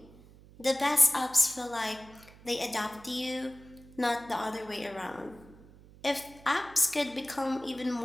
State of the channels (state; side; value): noise; right; hum, 22 dB below the sound